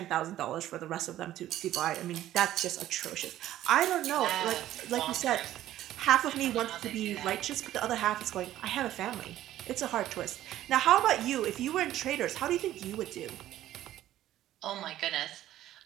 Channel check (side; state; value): left; quieter; 13.3 dB